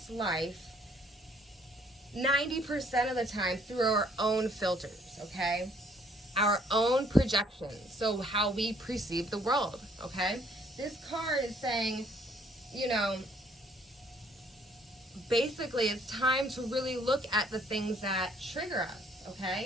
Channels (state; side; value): normal; both; correlation 0.63